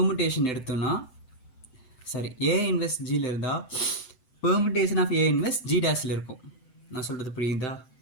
எடுத்தோன்னா ஏ இன்வெர்ஸ் ஜியில் இருந்தால் permutation of A inverse G டேஸில் இருக்கும். நான் சொல்கிறது புரியுதா?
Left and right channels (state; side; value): late; right; 7.8 ms